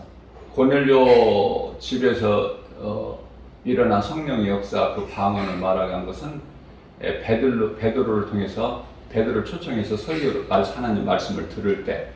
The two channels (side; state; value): both; identical; correlation 1.00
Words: 고넬료 집에서 일어난 성령의 역사, 그 방언을 말하는 것은 베드로를 통해서 베드로를 초청해서 설교를 하나님 말씀을 들을 때,